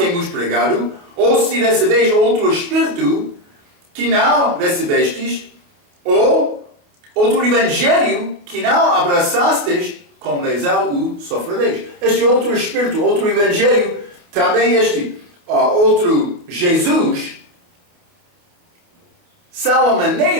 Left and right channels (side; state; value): left; late; 28 ms